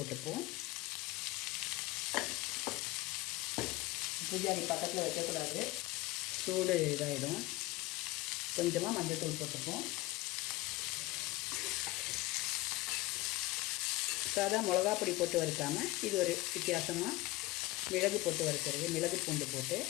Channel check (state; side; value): quieter; right; 19.5 dB